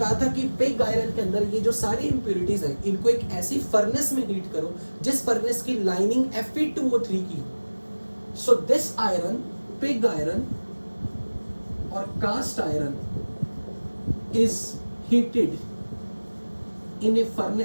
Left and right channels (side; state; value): both; inverted; correlation -1.00